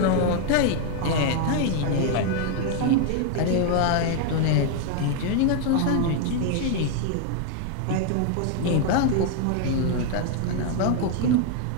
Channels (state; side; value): different; both; correlation 0.00